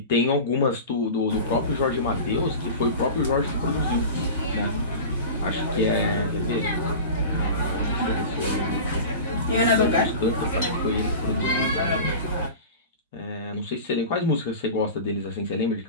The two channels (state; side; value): inverted; both; correlation -0.33